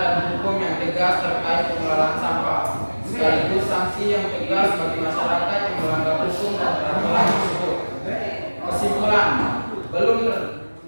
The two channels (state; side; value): inverted; both; correlation -1.00